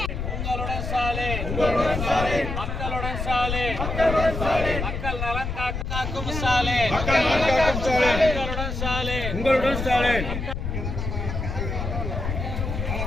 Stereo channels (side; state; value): left; noise; rumble, 4 dB below the sound